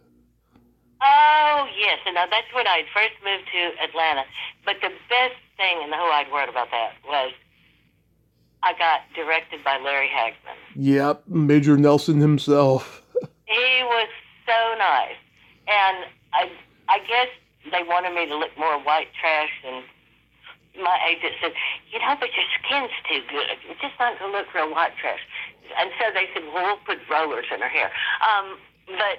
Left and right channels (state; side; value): identical; both; correlation 1.00